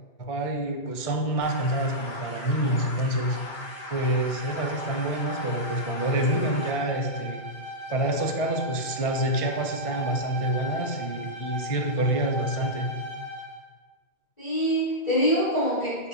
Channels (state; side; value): late; right; 2.2 ms